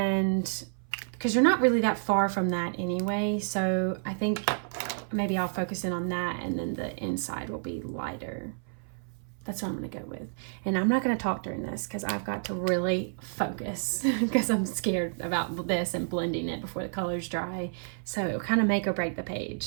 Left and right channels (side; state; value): left; silent; 56 dB below the other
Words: because you're not really that far from that anyway, so I think maybe I'll focus in on that, and then the inside will be lighter. That's what I'm going to go with. And I'm not going to talk during this because I've got to really focus because I'm scared about this and blending it before the color's dry. So it'll kind of make or break the page.